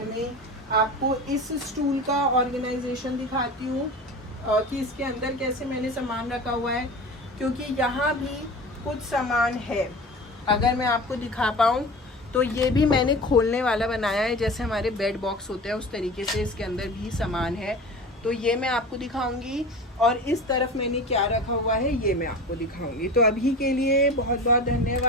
में आपको इस स्टूल का ऑर्गेनाइजेशन दिखाती हूँ कि इसके अंदर कैसे मैंने सामान रखा हुआ है, क्योंकि यहाँ भी कुछ सामान है। अगर मैं आपको दिखा पाऊँ तो ये भी मैंने खोलने वाला बनाया है, जैसे हमारे बेड बॉक्स होते हैं उस तरीके से इसके अंदर भी सामान है, तो ये मैं आपको दिखाऊंगी। और इस तरफ मैंने क्या रखा हुआ है ये मैं आपको दिखाऊंगी। तो अभी के लिए बहुत बहुत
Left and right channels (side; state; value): both; normal; correlation 0.34